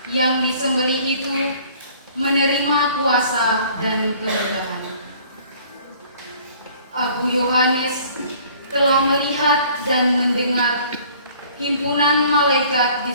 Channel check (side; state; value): both; inverted; correlation -0.54